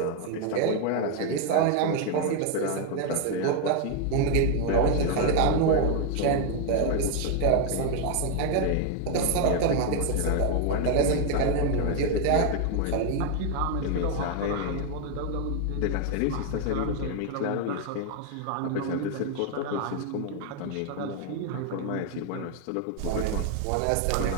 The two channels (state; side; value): different; both; correlation 0.01